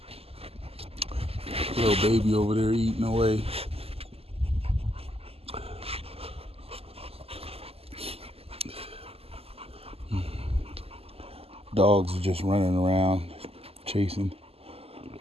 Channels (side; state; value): left; late; 0.29 ms